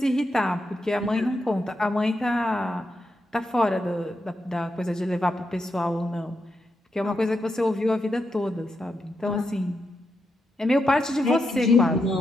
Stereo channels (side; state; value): both; normal; correlation 0.85